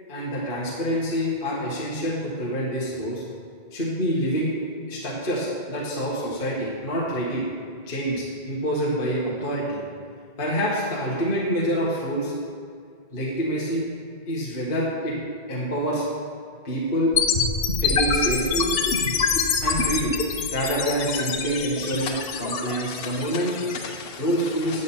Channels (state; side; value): late; right; 2.7 ms